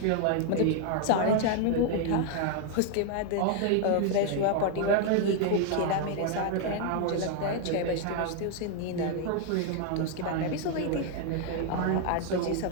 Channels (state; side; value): different; both; correlation 0.00